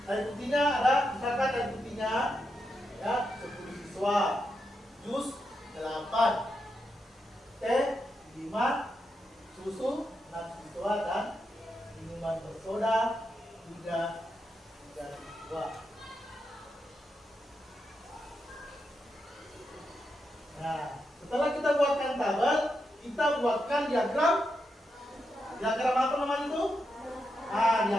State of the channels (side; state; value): both; normal; correlation 0.85